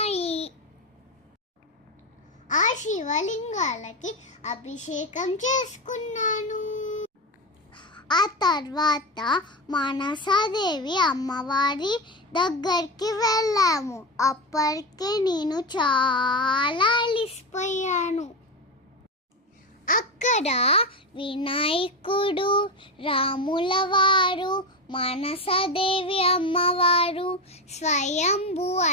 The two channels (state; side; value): normal; both; correlation 0.16